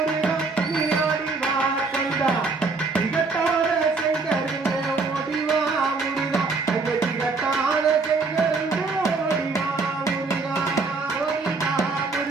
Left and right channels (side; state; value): left; quieter; 4.1 dB